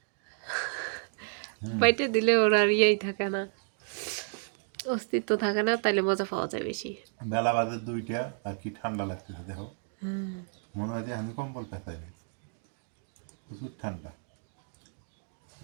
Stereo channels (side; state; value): left; silent; 57 dB below the other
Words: বাইটে দিলে ওর আর ইয়েই থাকে না, অস্তিত্ব থাকে না, তাইলে মজা পাওয়া যায় বেশি। বেলা বাজে 2টা, আর কি ঠান্ডা লাগতেছে দেখো। মনে হয় যে আমি কম্বল পেঁচাই, প্রচুর ঠান্ডা।